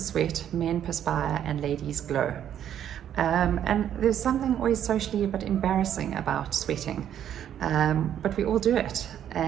sweat, men perspire, and ladies glow. And there's something always socially a bit embarrassing about sweating, but we all do it,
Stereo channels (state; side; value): quieter; left; 10.1 dB